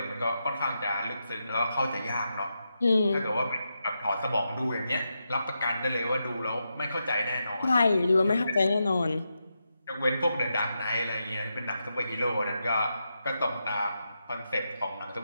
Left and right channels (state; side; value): inverted; both; correlation -0.86